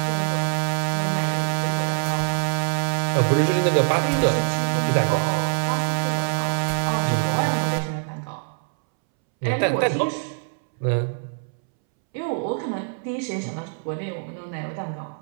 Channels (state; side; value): silent; left; 63 dB below the other